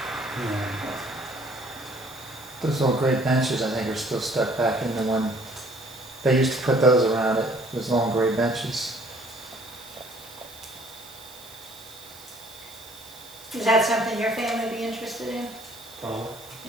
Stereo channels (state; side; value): noise; right; hiss, 19 dB below the sound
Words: Yeah. Those old great benches, I think, are still stuck back in the one. They used to put those around it, those long gray benches. Is that something your family would be interested in? Probably.